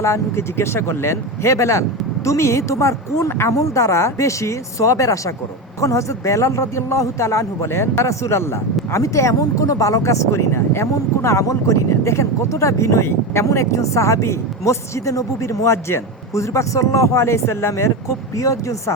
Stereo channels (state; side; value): normal; both; correlation 0.18